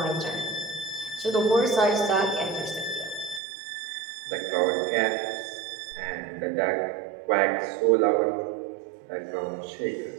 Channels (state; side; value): drops out; left; at 3.4 s